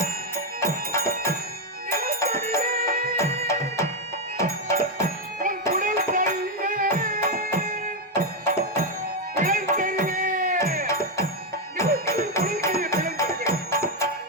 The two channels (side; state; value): both; normal; correlation 0.03